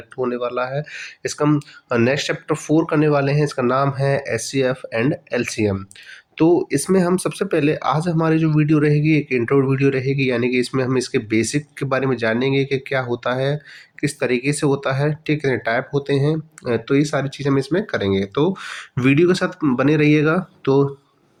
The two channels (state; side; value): identical; both; correlation 1.00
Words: होने वाला है। इसका हम नेक्स्ट चैप्टर 4 करने वाले हैं। इसका नाम है एचसीएफ एंड एलसीएम। तो इसमें हम सबसे पहले आज हमारी जो वीडियो रहेगी एक इंट्रो वीडियो रहेगी, यानी कि इसमें हम इसके बेसिक के बारे में जानेंगे कि क्या होता है, किस तरीके से होता है, कितने टाइप होते हैं। तो ये सारी चीज़ें हम इसमें करेंगे, तो वीडियो के साथ बने रहिएगा। तो